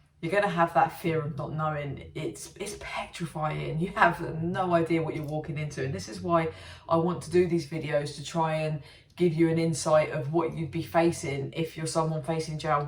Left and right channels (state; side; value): identical; both; correlation 1.00